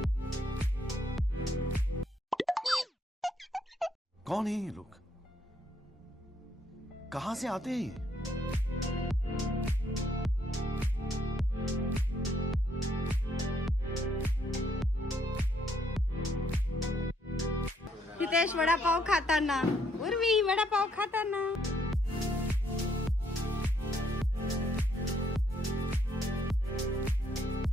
कौन है ये लोग? कहां से आते हैं ये? हितेश वडापाव खाताना, उर्वी वडापाव खाताना.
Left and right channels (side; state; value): both; normal; correlation 0.71